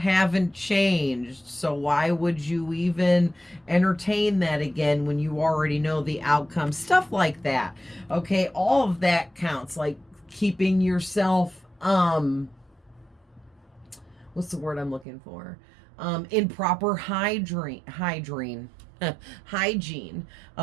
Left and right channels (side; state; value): left; drops out; at 15.1 s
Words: changed, so why would you even entertain that again when you already know the outcome, stuff like that. Okay, all of that counts, like keeping yourself what's the word I'm looking for? In proper hygiene.